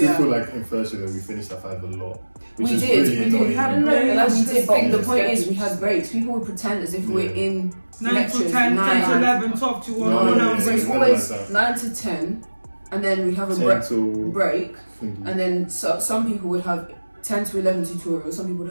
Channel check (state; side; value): inverted; both; correlation -1.00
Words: feel like in first year that we finished at 5 a lot. Which We is did, really we did. annoying. We had a break. we did, but the Yeah. point is we had breaks. People would pretend as if we're in 9 lectures, to 10, 10 to 9. 11, 12 to 1. No, So it's yeah, always like that. 9 to 10, and then we have a 10 till break, thingy. and then some people would have 10 to 11 tutorials, some people